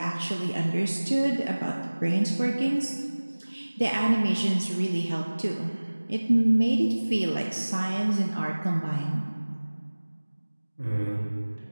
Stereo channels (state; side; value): inverted; both; correlation -1.00